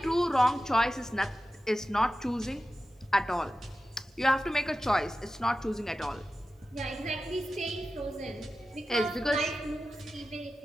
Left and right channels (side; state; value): both; normal; correlation 0.93